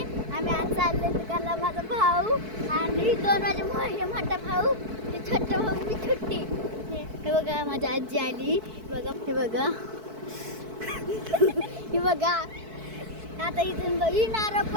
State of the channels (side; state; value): left; late; 4.6 ms